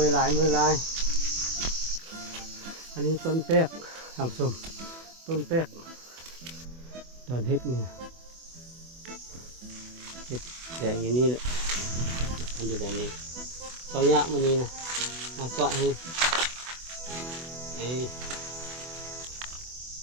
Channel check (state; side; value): late; left; 24 ms